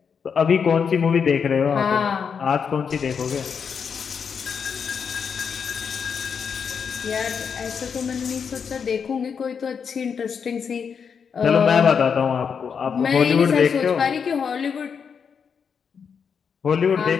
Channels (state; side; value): quieter; right; 6.5 dB